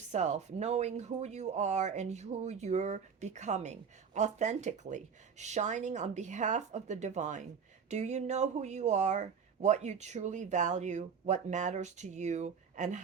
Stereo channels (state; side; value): quieter; left; 6.5 dB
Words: knowing who you are and who you're becoming, authentically, shining on behalf of the divine. Do you know who you are, what you truly value, what matters to you, and